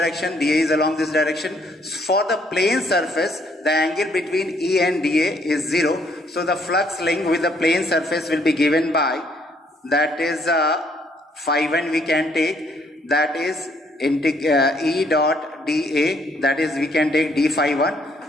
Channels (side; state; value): both; normal; correlation 0.67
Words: dA is along this direction. For the plane surface, the angle between E and dA is 0. So the flux link with the plane surface will be given by, that is phi1 we can take, that is E dot dA, that is we can take d phi